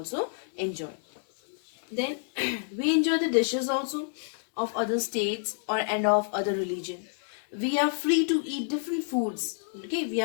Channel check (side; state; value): right; silent; digital silence